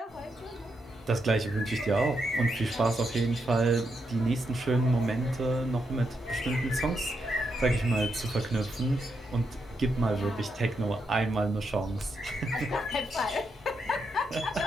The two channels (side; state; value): both; normal; correlation 0.82